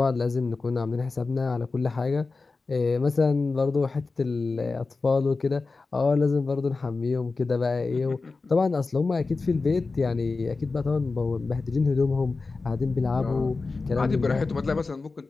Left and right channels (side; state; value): right; quieter; 3.9 dB